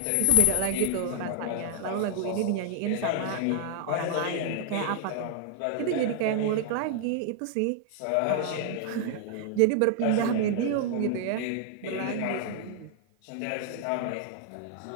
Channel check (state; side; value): different; both; correlation 0.00